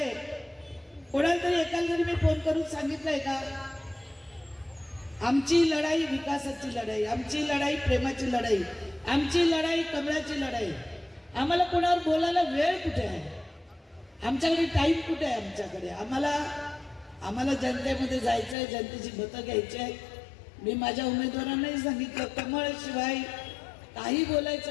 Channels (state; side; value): drops out; right; at 18.6 s